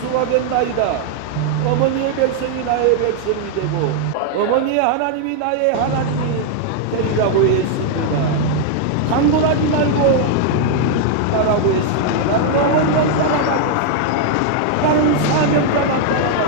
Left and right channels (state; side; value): different; both; correlation 0.00